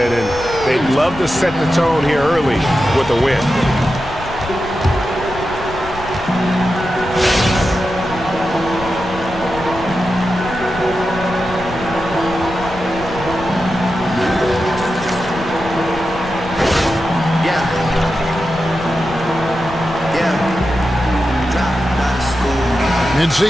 and they'd love to set the tone here early with a win.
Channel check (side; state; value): left; noise; rumble, 13 dB below the sound